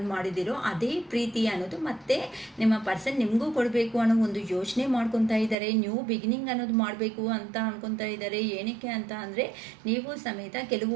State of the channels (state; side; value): drops out; left; at 5.6 s